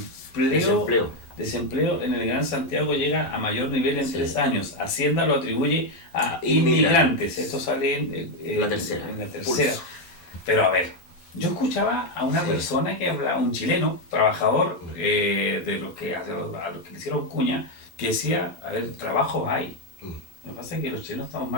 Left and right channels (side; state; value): right; late; 11 ms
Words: Desempleo en el Gran Santiago llega a mayor nivel en 3 años. Hacienda lo atribuye a Inmigrantes. inmigrantes. Esto sale en la tercera. En la tercera. Pulso. Pero a ver, yo escuchaba a una persona que hablaba, un chileno, trabajador, de los que a los que le hicieron cuña, que decía, a ver, trabajo hay. Lo que pasa es que los chilenos estamos